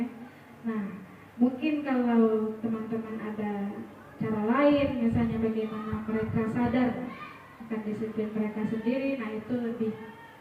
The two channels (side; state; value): both; identical; correlation 1.00